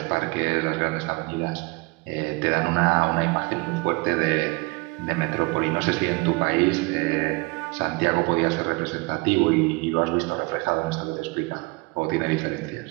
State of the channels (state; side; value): quieter; left; 26.5 dB